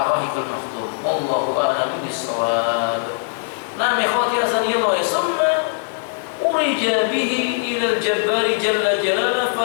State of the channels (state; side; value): silent; right; 63 dB below the other